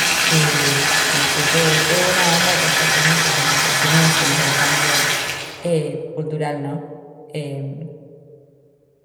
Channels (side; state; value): both; identical; correlation 1.00